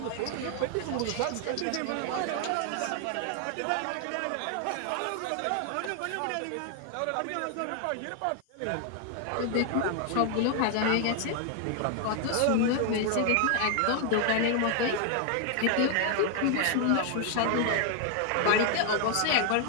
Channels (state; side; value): different; both; correlation 0.00